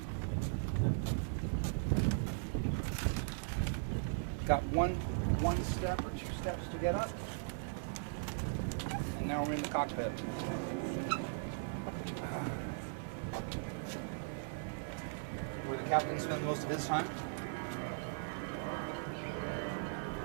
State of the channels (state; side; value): silent; left; digital silence